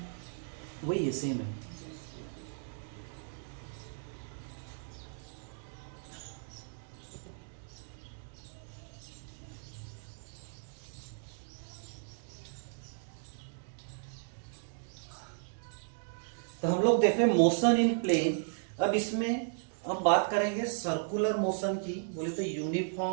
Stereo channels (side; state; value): left; silent; digital silence